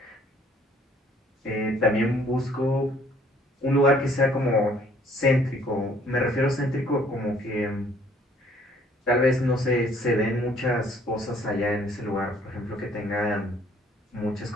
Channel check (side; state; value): both; normal; correlation 0.60